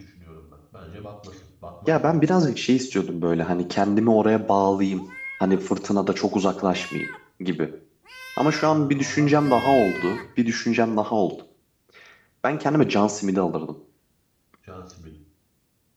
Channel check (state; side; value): identical; both; correlation 1.00